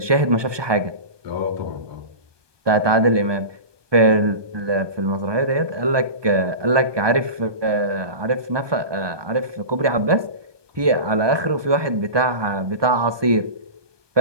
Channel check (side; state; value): left; late; 1.2 ms